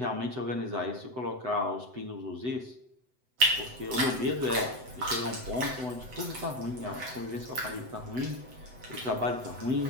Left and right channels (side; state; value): left; late; 7.9 ms